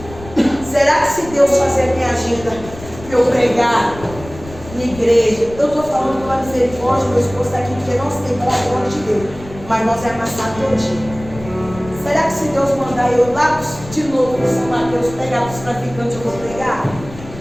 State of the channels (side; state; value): left; noise; rumble, 15 dB below the sound